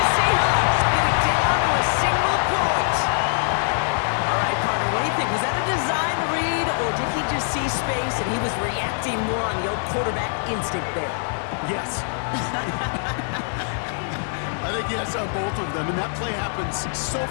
Seahawks get it down to a single point. All right, partner, what do you think? Was that a design read, or did he just see space and he was reacting more on the old quarterback instinct there? Yes. I think yes on both of them, and that play happens so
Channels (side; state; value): right; silent; 60 dB below the other